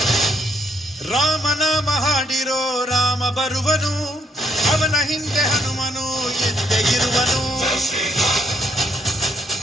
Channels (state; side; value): normal; both; correlation 0.72